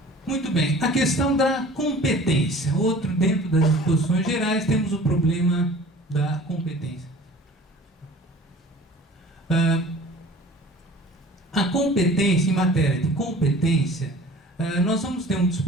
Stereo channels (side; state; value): both; normal; correlation 0.45